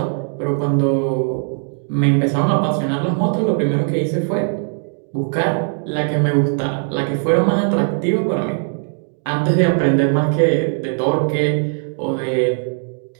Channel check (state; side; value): silent; left; 63 dB below the other